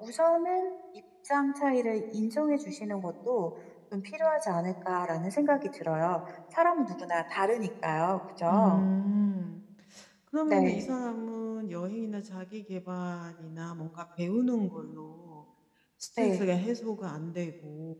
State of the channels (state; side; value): identical; both; correlation 1.00